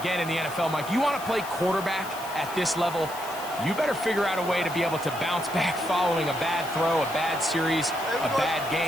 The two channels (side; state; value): left; noise; hiss, 14 dB below the sound